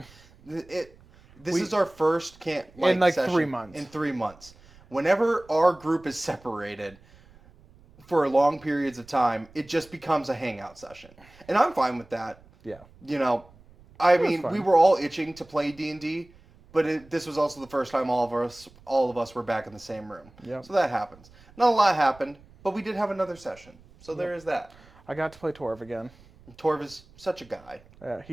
This is our first in like session 3 months. In 3 months. Whenever our group is separated for long periods of time, it just becomes a hangout session. And I'm fine with that. Yeah. You know, I mean, fine. we were all itching to play D&D, but this was also the first time all of us were back in the same room. Yep. So that happens. Not a lot happened, but we did have another session. So there is that. I got to play Torv again. Torv is such a guy.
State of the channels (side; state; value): right; noise; rumble, 26 dB below the sound